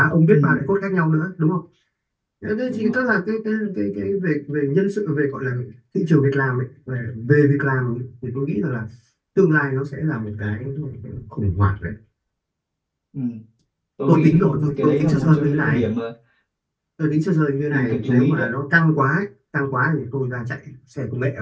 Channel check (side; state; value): both; identical; correlation 1.00